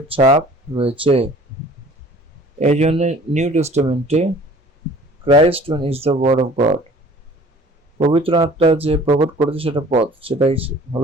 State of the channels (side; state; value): both; normal; correlation 0.50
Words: ছাপ রয়েছে। এই জন্য নিউ টেস্টামেন্টে Christ is the word of God. পবিত্র আত্মা যে প্রকট করেছে সেটা পদ, সেটাই